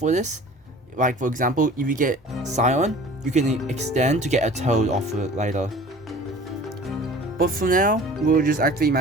this. Like for example, if you get Scion, you can extend to get a Toad off it later. But for now, we'll just activate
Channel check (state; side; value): normal; both; correlation 0.45